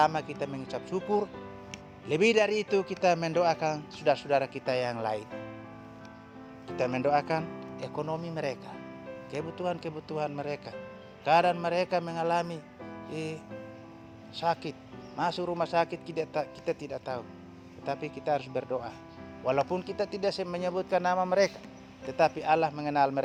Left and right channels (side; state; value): both; identical; correlation 1.00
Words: kita mengucap syukur. Lebih dari itu kita mendoakan saudara-saudara kita yang lain. Kita mendoakan ekonomi mereka, kebutuhan-kebutuhan mereka. Kadang mereka mengalami sakit, masuk rumah sakit, kita tidak tahu. Tetapi kita harus berdoa. Walaupun kita tidak menyebutkan nama mereka, tetapi Allah mengenal